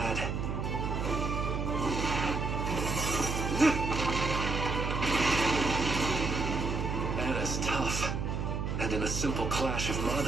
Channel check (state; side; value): noise; right; hum, 2 dB below the sound